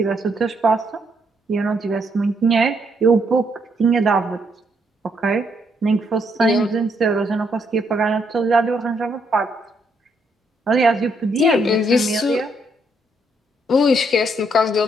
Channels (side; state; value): both; normal; correlation 0.74